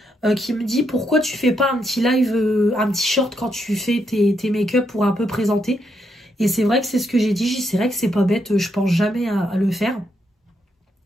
Qui me dit pourquoi tu fais pas un petit live, un petit short quand tu fais tes make-up pour un peu présenter. Et c'est vrai que c'est ce que j'ai dit. C'est vrai que c'est pas bête. Je pense jamais à le faire.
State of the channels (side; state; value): both; normal; correlation 0.79